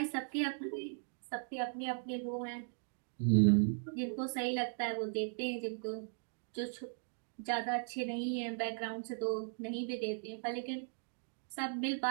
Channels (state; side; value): silent; left; digital silence